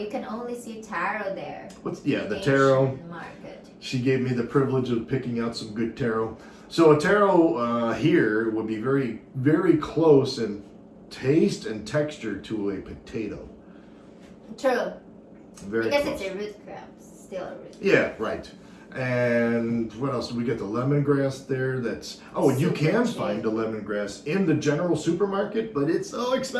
can only see taro there. The taro. Asian market. She gave me the privilege of picking out some good taro. So a taro here would be very, very close in taste and texture to a potato. True. Very Because close. it's a root crop, still a root. Yeah, right. And what else? We get the lemongrass there. And you Super can cheap. find the lemongrass in the general supermarket, but it's so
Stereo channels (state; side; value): identical; both; correlation 1.00